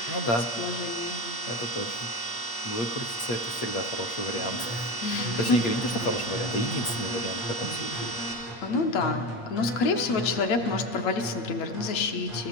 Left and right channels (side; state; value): right; late; 8.6 ms